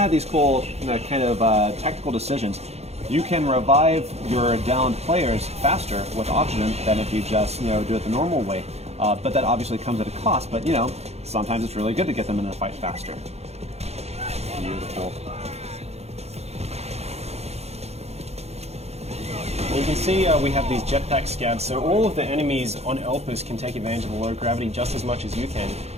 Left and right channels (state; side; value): late; left; 0.31 ms